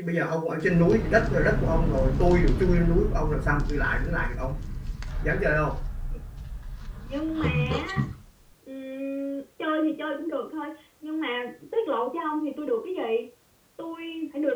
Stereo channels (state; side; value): identical; both; correlation 1.00